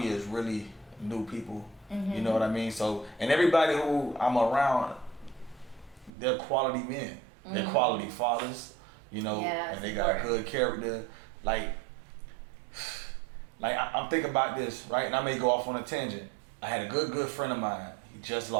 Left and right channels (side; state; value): left; drops out; at 6.1 s